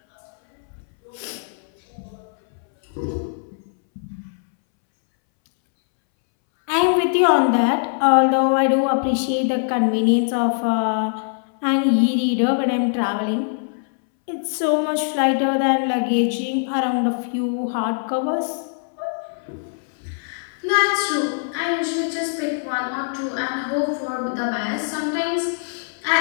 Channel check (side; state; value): right; silent; 63 dB below the other